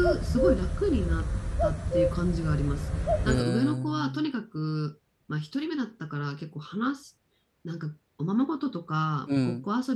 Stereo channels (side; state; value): both; identical; correlation 1.00